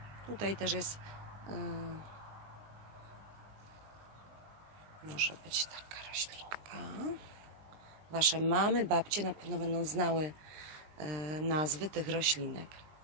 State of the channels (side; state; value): left; late; 20 ms